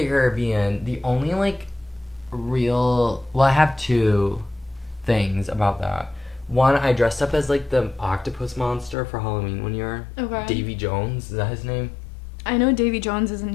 Caribbean, the only, like, I have two things about that. One, I dressed up as, like, the octopus monster for Halloween one year. Okay. Davy Jones, is that his name? I know Davy Jones is a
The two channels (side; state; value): right; drops out; at 9.0 s